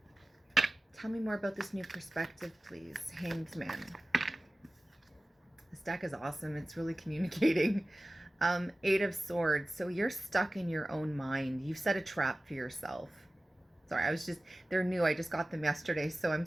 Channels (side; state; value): both; normal; correlation 0.96